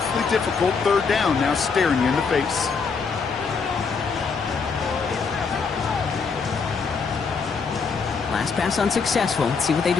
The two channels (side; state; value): right; quieter; 5.3 dB